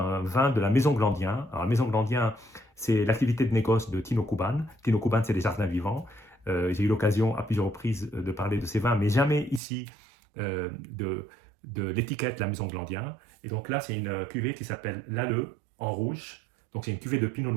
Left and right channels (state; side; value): drops out; left; at 9.6 s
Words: vin de la Maison Glandien. Alors la Maison Glandien, c'est l'activité de négoce de Tino Kuban. Tino Kuban, c'est des jardins vivants. J'ai eu l'occasion à plusieurs reprises de parler de ces vins, mais jamais ici de l'étiquette La Maison Glandien. Et donc là, c'est une cuvée qui s'appelle l'Alleux en rouge. Donc c'est une cuvée de Pinot